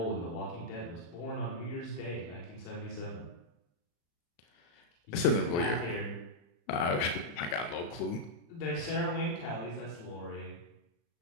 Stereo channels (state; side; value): late; right; 35 ms